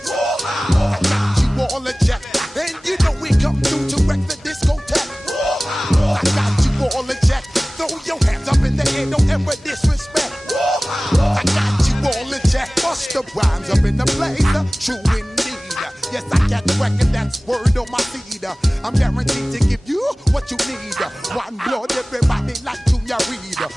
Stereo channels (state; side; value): normal; both; correlation 0.98